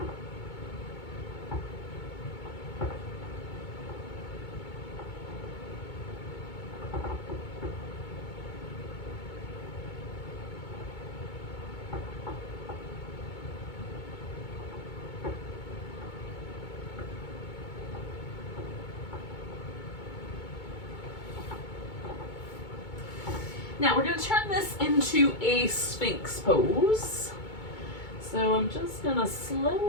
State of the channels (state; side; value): late; right; 2.2 ms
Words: Now we're going to turn this into a Sphinx pose. So I'm just going to